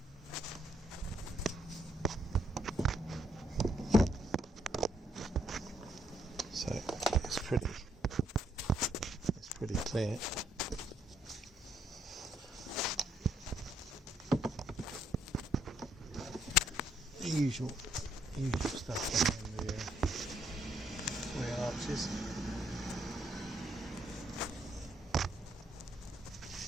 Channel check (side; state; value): both; normal; correlation 0.71